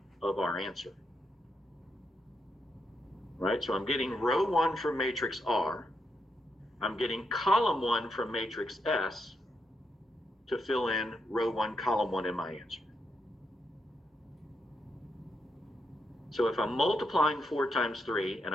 of our answer. Right, so I'm getting row 1 from matrix R. I'm getting column 1 from matrix S to fill in row 1, column 1 in my answer. So if I'm multiplying 4 times 3 and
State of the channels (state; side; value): normal; both; correlation 0.82